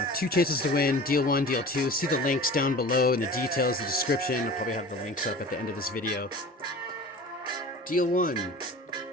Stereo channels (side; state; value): both; normal; correlation 0.39